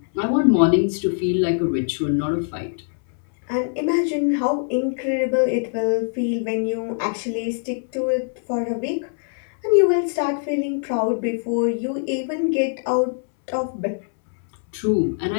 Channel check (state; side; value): silent; right; 64 dB below the other